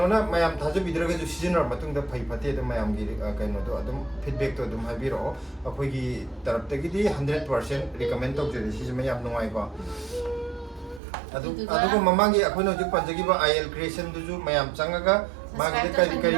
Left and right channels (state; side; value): drops out; left; at 11.0 s